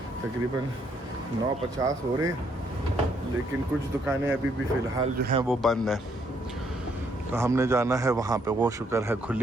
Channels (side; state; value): both; normal; correlation 0.71